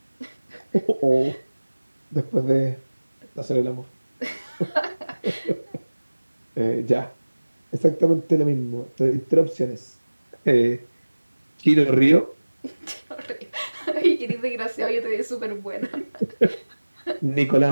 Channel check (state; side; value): inverted; both; correlation -1.00